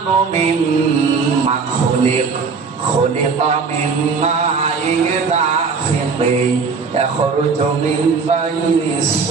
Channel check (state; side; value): quieter; left; 5.1 dB